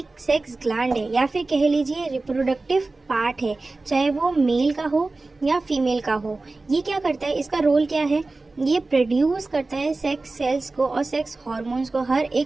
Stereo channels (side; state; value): left; quieter; 3.4 dB